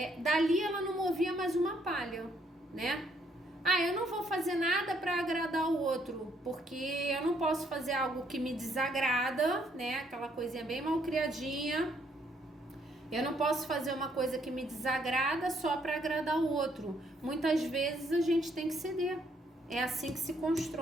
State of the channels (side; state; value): both; normal; correlation 0.69